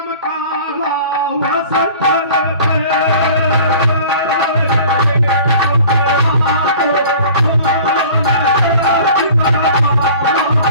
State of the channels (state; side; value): inverted; both; correlation -0.45